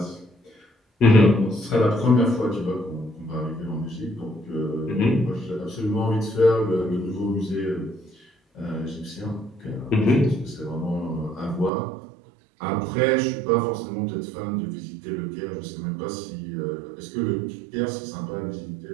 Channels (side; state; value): left; drops out; at 11.7 s